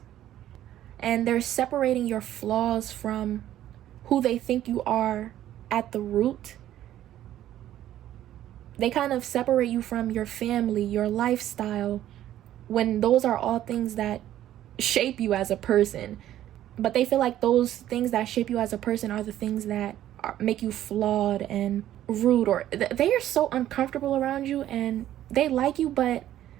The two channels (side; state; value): left; quieter; 12.5 dB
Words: and they're separating your flaws from who they think you are at the root. They kind of separate you from your family, your lifestyle, when those are all things that shape you as a person. But they feel like those things that shape you as a person are the things that make you flawed and rude, or they are so uncomfortable around you, and they like you, but